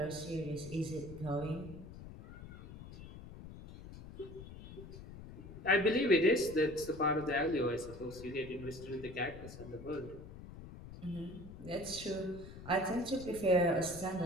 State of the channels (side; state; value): left; noise; rumble, 14 dB below the sound